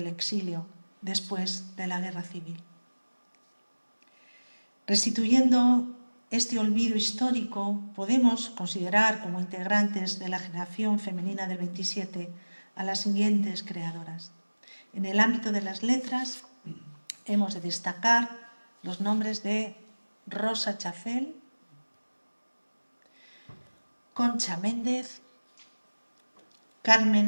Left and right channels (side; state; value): both; inverted; correlation -1.00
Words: exilio después de la Guerra Civil. Restituyendo este olvido histórico, podemos considerar como integrantes de la generación femenina del 27 a las siguientes creadoras. En el ámbito de las letras, hemos de destacar los nombres de Rosa Chacel, Concha Méndez,